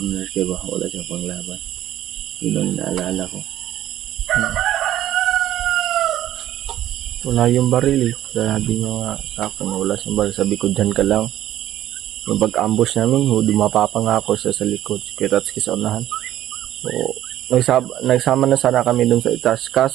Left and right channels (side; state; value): left; quieter; 12.8 dB